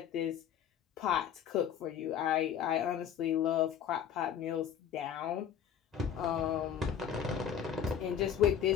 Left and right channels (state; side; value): quieter; right; 8.8 dB